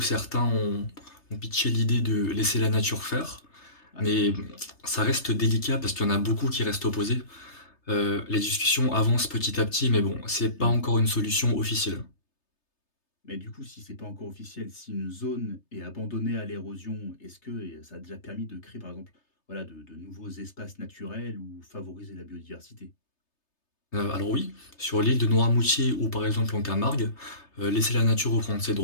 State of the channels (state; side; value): late; right; 3.3 ms